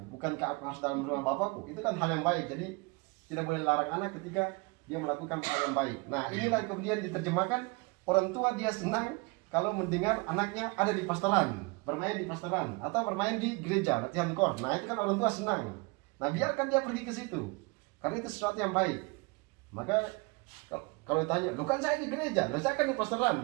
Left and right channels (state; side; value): quieter; left; 28.0 dB